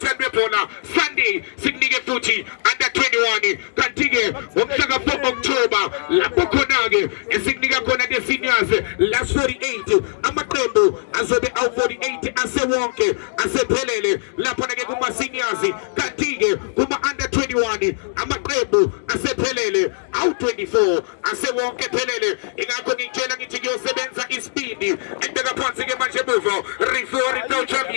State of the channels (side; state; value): right; silent; digital silence